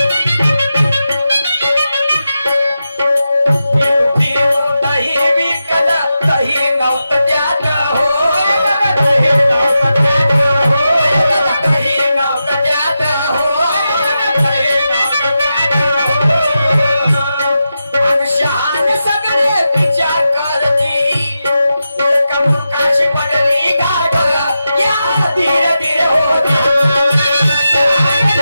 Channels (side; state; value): both; inverted; correlation -0.89